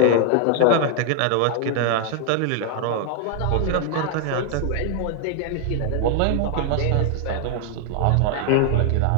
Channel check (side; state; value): both; different; correlation 0.00